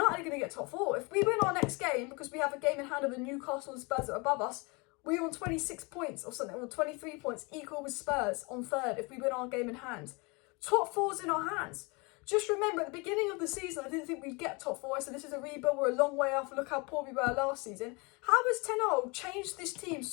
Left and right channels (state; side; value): quieter; right; 28.6 dB